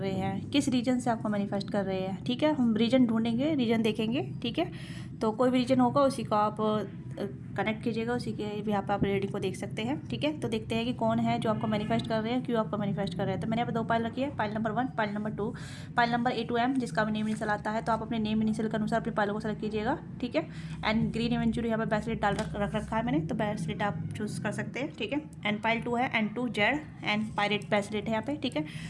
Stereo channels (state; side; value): identical; both; correlation 1.00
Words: हैं, किस रीजन से आपको मैनिफेस्ट कर रहे हैं। ठीक है, हम रीजन ढूंढेंगे, रीजन देखेंगे। ठीक है, तो कोई भी रीजन होगा उसी को आप कनेक्ट कीजिएगा, उसी के भी आप रीडिंग को देख सकते हैं। ठीक है, तो देखते हैं कि कौन है जो आपको मैनिफेस्ट कर रहे हैं, क्यों आपको मैनिफेस्ट कर रहे हैं। तो मैंने यहाँ पे 2 पाइल रखी है, pile number 1, pile number 2, pile number A to M, जिसका भी नेम इनिशियल आता है। तो आप अपने नेम इनिशियल के अनुसार अपनी पाइलों को सेलेक्ट कीजिएगा। ठीक है, एंड ग्रीन इवेंचुअली यहाँ पे ब्रेसलेट डाल रख रखा है मैंने, तो ब्रेसलेट आप चूज़ कर सकते हैं। ठीक है, एंड पाइल 2 है, and 2 Z and pirate bracelet है यहाँ पे। ठीक है,